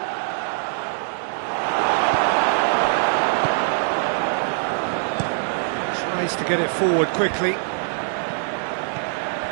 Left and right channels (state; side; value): silent; left; 63 dB below the other